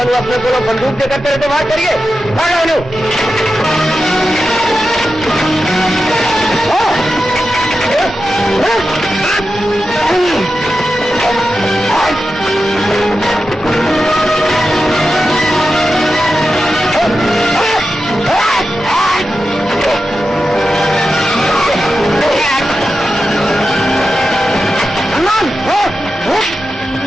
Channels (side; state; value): both; normal; correlation 0.91